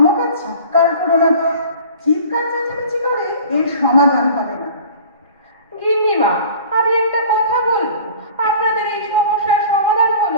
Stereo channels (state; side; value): inverted; both; correlation -0.44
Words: চিৎকার করো না তো। চিৎকার চেঁচামেচি করে এর সমাধান হবে না। গিন্নিমা, আমি একটা কথা বলবো। আপনাদের এই সমস্যার সমাধান